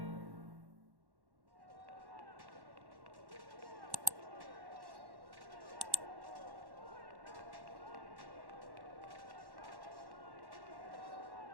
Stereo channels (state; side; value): late; left; 1.1 ms